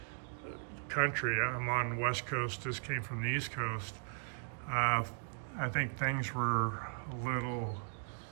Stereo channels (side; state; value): left; silent; digital silence